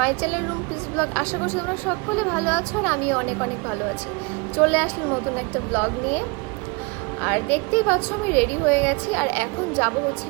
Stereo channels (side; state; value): left; quieter; 28.9 dB